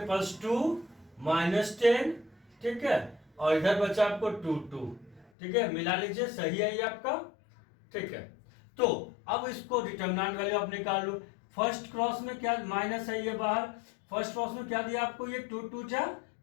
पास 2 - 10, ठीक है, और इधर बचा आपको 2 2, ठीक है, मिला लीजिए, सही है ये आपका, ठीक है। तो अब इसको डिटरमिनेंट वैल्यू आप निकाल लो, फर्स्ट क्रॉस में क्या माइनस है ये बाहर, फर्स्ट क्रॉस में क्या दिया आपको ये 2 2 जा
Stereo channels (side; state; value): right; drops out; at 5.3 s